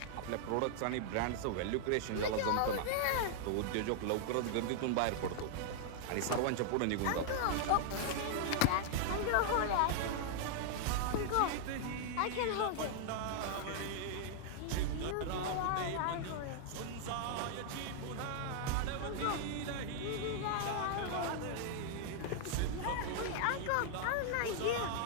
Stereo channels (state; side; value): different; both; correlation 0.00